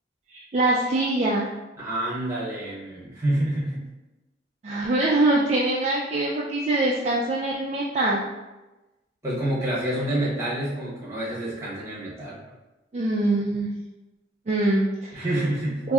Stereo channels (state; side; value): normal; both; correlation 0.45